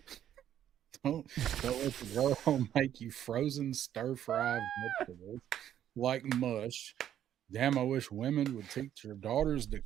Don't let the girl make you frozen stir-fried vegetables like mush. Damn, I wish women would teach their daughters to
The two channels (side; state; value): left; quieter; 10.7 dB